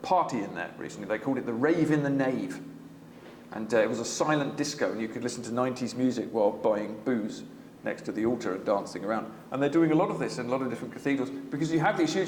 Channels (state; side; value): identical; both; correlation 1.00